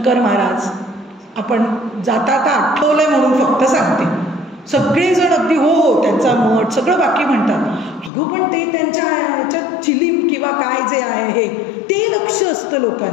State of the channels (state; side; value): drops out; right; at 8.1 s